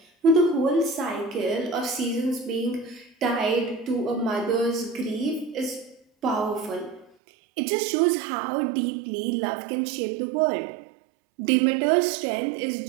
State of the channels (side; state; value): left; drops out; at 7.2 s